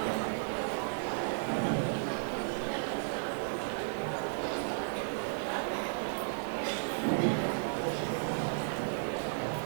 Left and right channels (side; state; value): left; silent; 55 dB below the other